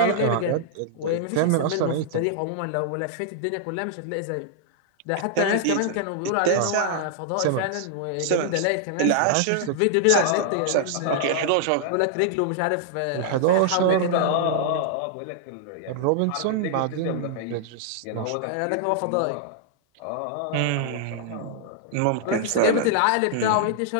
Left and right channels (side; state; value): both; different; correlation -0.01